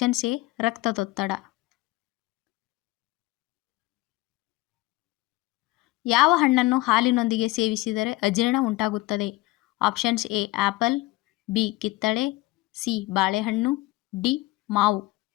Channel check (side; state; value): right; quieter; 19.5 dB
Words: ಎ ರಕ್ತದೊತ್ತಡ. ಯಾವ ಹಣ್ಣನ್ನು ಹಾಲಿನೊಂದಿಗೆ ಸೇವಿಸಿದರೆ ಅಜೀರ್ಣ ಉಂಟಾಗುತ್ತದೆ? ಆಪ್ಷನ್ಸ್ ಎ ಆಪಲ್, ಬಿ ಕಿತ್ತಳೆ, ಸಿ ಬಾಳೆಹಣ್ಣು, ಡಿ ಮಾವು.